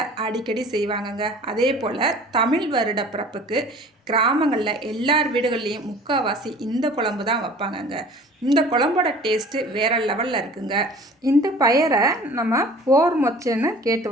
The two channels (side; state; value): both; normal; correlation 0.46